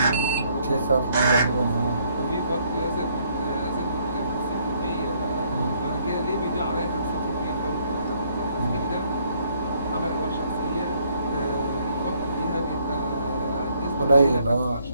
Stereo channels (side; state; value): both; inverted; correlation -0.67